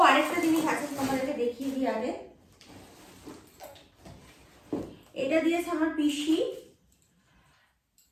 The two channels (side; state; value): both; identical; correlation 1.00